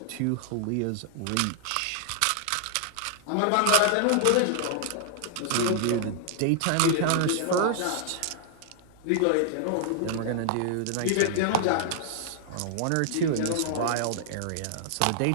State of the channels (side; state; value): both; different; correlation -0.01